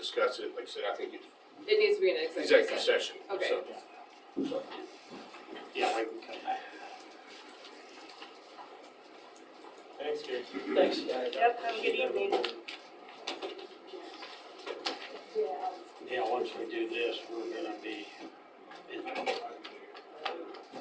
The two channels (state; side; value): identical; both; correlation 1.00